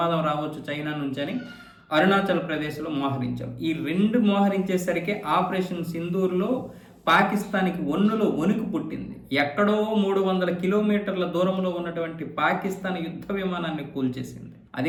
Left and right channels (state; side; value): identical; both; correlation 1.00